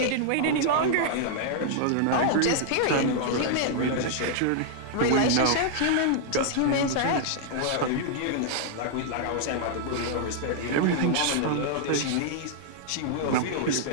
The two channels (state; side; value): different; both; correlation -0.01